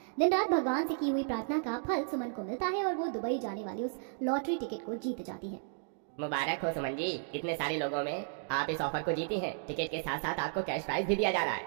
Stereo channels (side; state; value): left; silent; digital silence